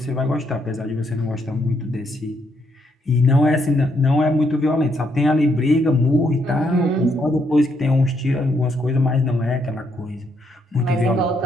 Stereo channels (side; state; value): both; normal; correlation 0.75